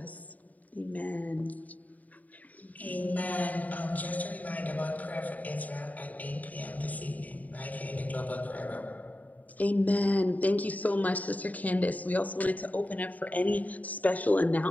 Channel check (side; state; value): right; late; 0.075 ms